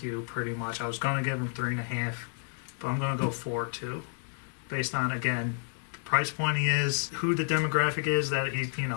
you pretty much. I was going to give him 3.5, but I'm going to go 4 too, based on again the price point he is, who the demographic is that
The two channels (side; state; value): right; silent; 56 dB below the other